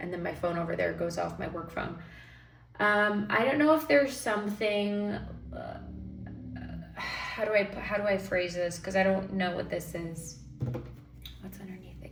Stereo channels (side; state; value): both; identical; correlation 1.00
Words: and then my phone over there goes off, my work phone. I don't know if there's something, how do I phrase this? Because I don't know what this is. What's underneath